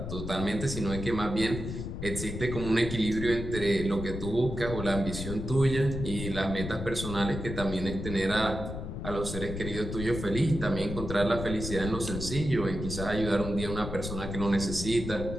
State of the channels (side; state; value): left; noise; rumble, 6 dB below the sound